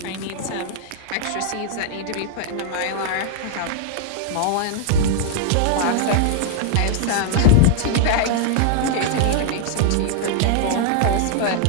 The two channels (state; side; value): different; both; correlation -0.01